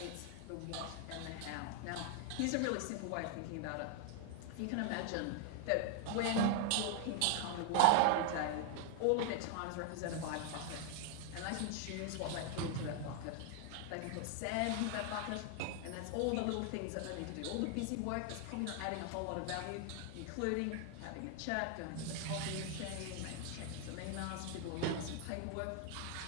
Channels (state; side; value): different; both; correlation 0.00